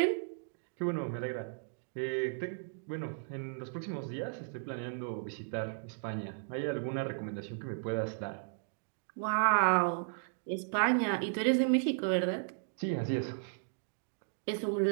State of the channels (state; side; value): silent; left; digital silence